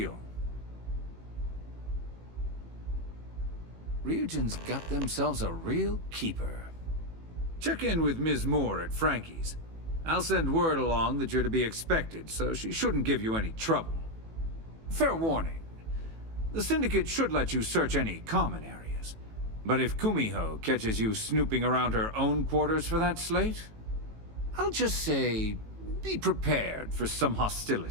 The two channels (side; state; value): left; late; 18 ms